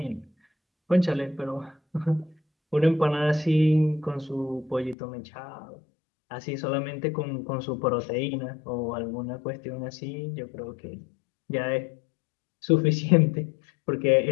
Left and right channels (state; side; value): drops out; right; at 5.0 s